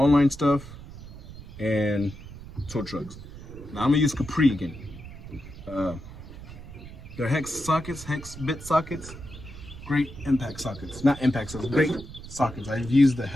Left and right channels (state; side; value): noise; right; rumble, 14 dB below the sound